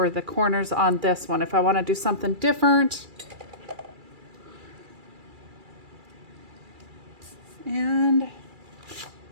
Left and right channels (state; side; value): late; left; 2.3 ms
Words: the corners on this one. If I want to do something different. And